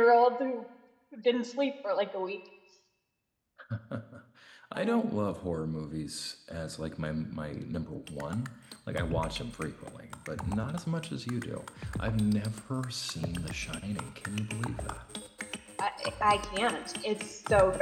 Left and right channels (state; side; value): identical; both; correlation 1.00